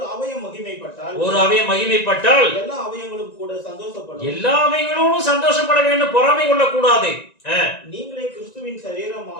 அவயம் மகிமைப்பட்டால் எல்லா அவயங்களும் கூட சந்தோஷப்படும். எல்லா அவயங்களும் சந்தோஷப்பட வேண்டும், பொறாமை கொள்ளக்கூடாது. நீங்களே கிறிஸ்துவின்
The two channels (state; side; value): late; right; 1.9 ms